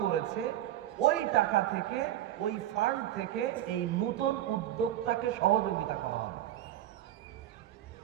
করেছে, ওই টাকা থেকে, ওই ফান্ড থেকে এই নতুন উদ্যোগটাকে সহযোগিতা করা হবে।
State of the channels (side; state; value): left; quieter; 12.8 dB